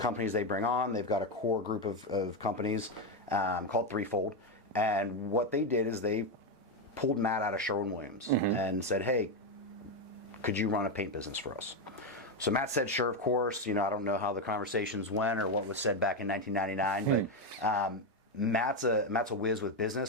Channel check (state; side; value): normal; both; correlation 0.08